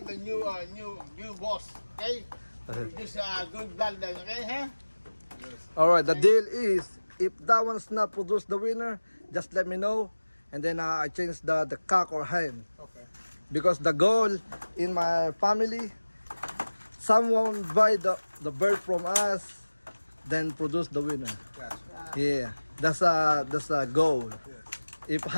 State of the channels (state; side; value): inverted; both; correlation -1.00